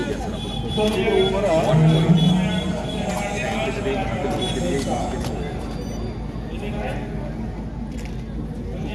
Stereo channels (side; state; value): both; identical; correlation 1.00